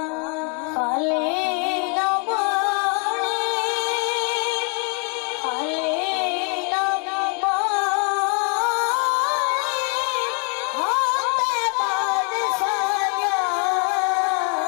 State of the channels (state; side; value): quieter; right; 37.4 dB